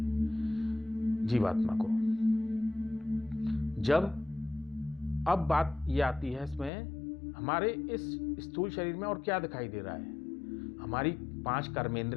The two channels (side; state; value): right; drops out; at 6.7 s